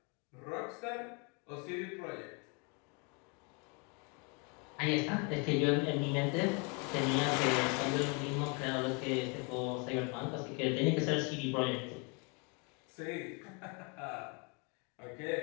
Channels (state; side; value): quieter; right; 33.5 dB